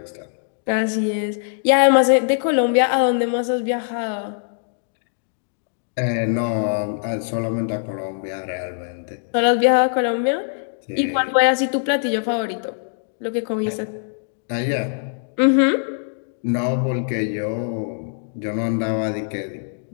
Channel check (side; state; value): right; silent; digital silence